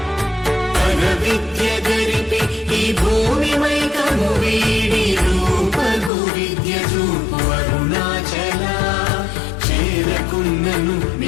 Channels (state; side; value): drops out; right; at 6.1 s